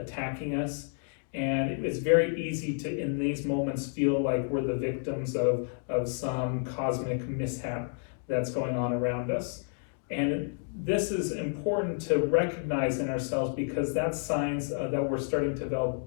us. And it's very easy to, in these moments, feel like we're the victims of some cosmic mishap that's going on around us. And this is important to recognize in ourselves, because that's signs that we're starting to develop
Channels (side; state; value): right; silent; 55 dB below the other